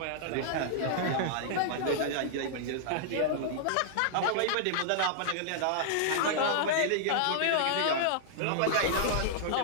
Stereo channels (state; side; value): different; both; correlation -0.01